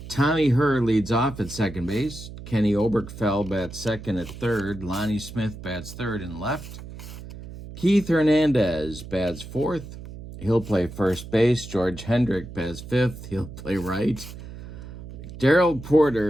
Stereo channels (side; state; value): right; noise; hum, 13 dB below the sound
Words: Tommy Herr leads off at second base. Kenny Oberkfell bats second at third. Lonnie Smith bats third and left. Keith Hernandez bats fourth. He'll play first base. George Hendrick bats fifth. He'll play right. Darrell